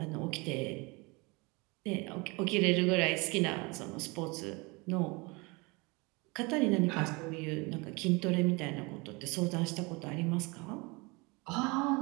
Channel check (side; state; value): left; quieter; 27.0 dB